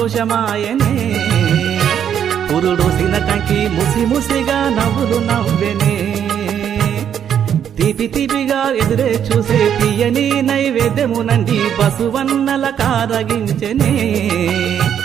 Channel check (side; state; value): left; quieter; 9.0 dB